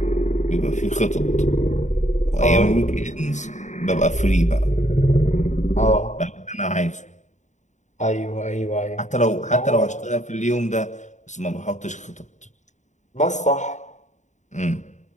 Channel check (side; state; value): right; late; 0.35 ms